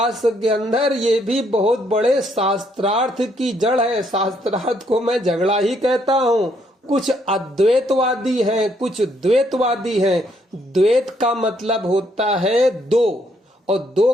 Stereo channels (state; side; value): normal; both; correlation 0.71